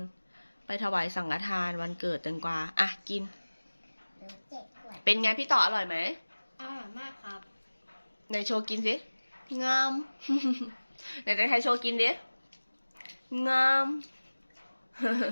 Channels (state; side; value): inverted; both; correlation -1.00